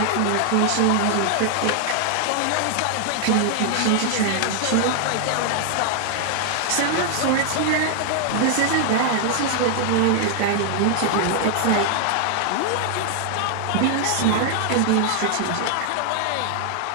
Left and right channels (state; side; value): different; both; correlation 0.00